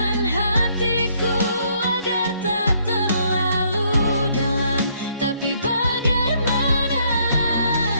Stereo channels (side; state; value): both; inverted; correlation -0.68